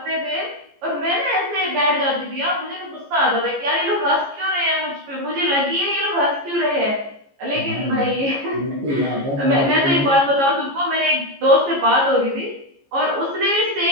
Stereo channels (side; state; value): left; late; 14 ms